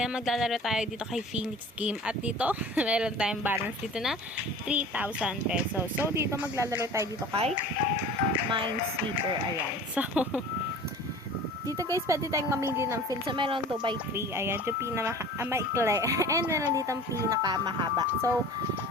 maglalaro tayo dito kay Phoenix Game. At dito, meron tayong balance dito na 3,000 pesos. So dito maglalaro tayo dito kay Minesweeper. Ayan. So, dito guys, pwede tayong mamili ng field. So, meron 2x3. Ayan, yung pinamaikli. And meron dito ang pinakamahaba. So,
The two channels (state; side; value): normal; both; correlation 0.41